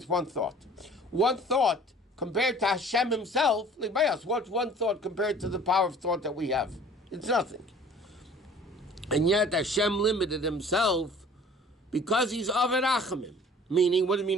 one thought. One thought compared to Hashem himself, like by us, what's one thought compared to the power of thought that we have? It's nothing. And yet Hashem limited himself because he's Averachimim. Meaning, what do you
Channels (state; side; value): normal; both; correlation 0.49